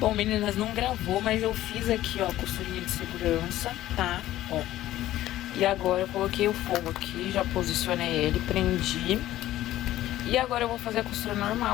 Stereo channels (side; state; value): right; quieter; 14.4 dB